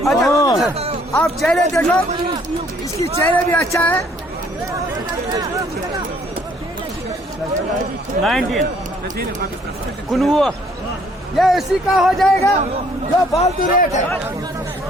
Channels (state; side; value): normal; both; correlation 0.62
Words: आप चेहरे देखो, इसकी चेहरे भी अच्छा है। 19 ये इसी का हो जाएगा जो फालतू रेट है।